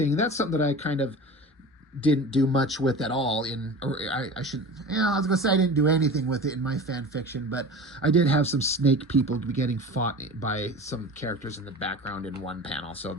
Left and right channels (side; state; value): both; normal; correlation 0.35